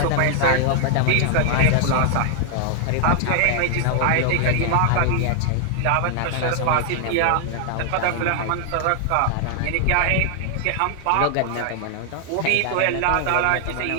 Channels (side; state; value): both; different; correlation 0.00